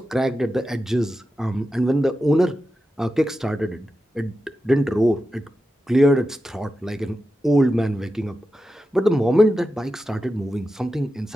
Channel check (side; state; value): both; normal; correlation 0.91